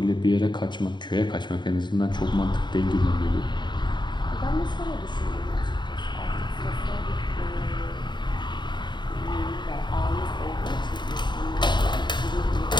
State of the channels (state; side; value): late; right; 0.22 ms